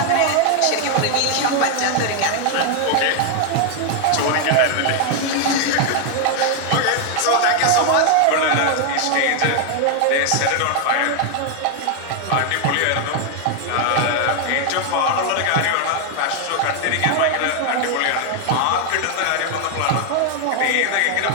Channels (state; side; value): different; both; correlation 0.00